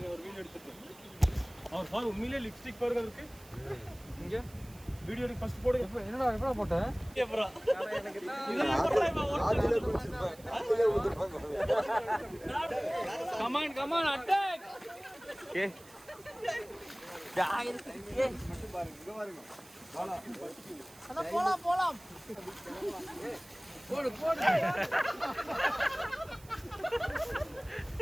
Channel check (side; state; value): right; noise; hiss, 22 dB below the sound